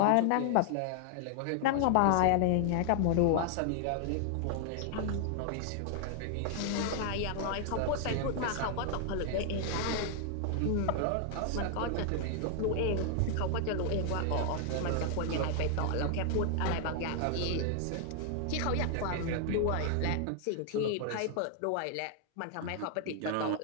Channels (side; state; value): both; different; correlation 0.00